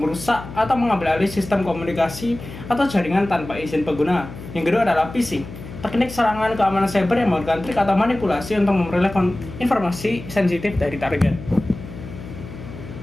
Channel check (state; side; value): noise; left; hum, 13 dB below the sound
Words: merusak atau mengambil alih sistem komunikasi atau jaringan tanpa izin pengguna. Yang kedua adalah phishing, teknik serangan keamanan cyber yang menggunakan trik atau manipulasi untuk memperoleh informasi sensitif dari target.